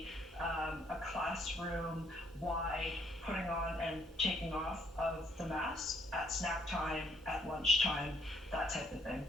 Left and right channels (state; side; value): normal; both; correlation 0.67